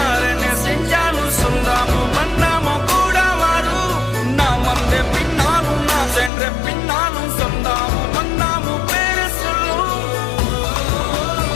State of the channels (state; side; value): drops out; right; at 6.3 s